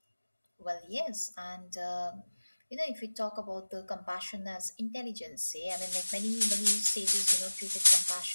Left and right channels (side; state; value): both; inverted; correlation -1.00